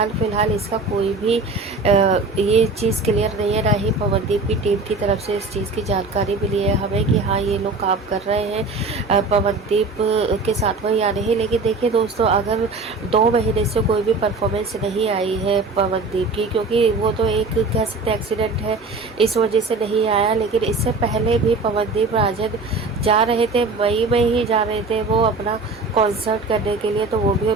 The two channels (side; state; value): left; quieter; 3.7 dB